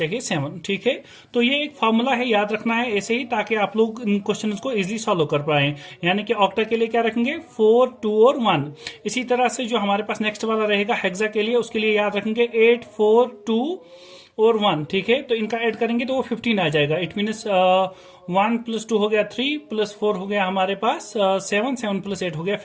7, ठीक है। तो ये एक फॉर्मूला है, याद रखना है ऐसे ही, ताकि आप लोग इन क्वेश्चंस को इजीली सॉल्व कर पाए। यानी कि ऑक्टा के लिए क्या रखेंगे 4 2 और 1। इसी तरह से जो हमारे पास नेक्स्ट वाला रहेगा हेक्सा के लिए, उसके लिए याद रखेंगे 8 4 2 और 1, ठीक है। तो इनका ऐड करेंगे तो वो 15 आ जाएगा, इट मीन्स 1 प्लस 2 हो गया 3 प्लस 4 हो गया हमारे पास 7, 7 प्लस 8 हो गया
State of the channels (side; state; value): both; identical; correlation 1.00